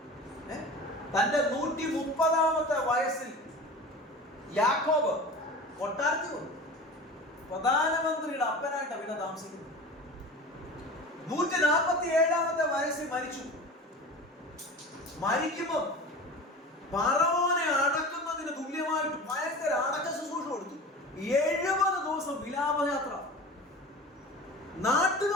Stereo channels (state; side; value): normal; both; correlation 0.35